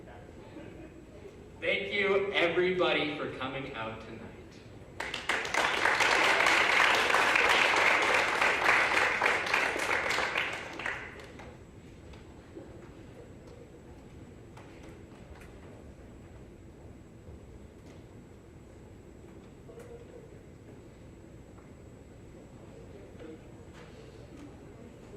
Thank you, everybody, for coming out tonight.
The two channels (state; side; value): identical; both; correlation 1.00